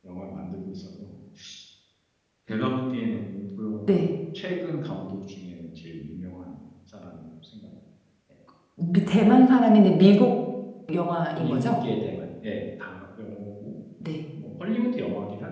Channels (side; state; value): both; identical; correlation 1.00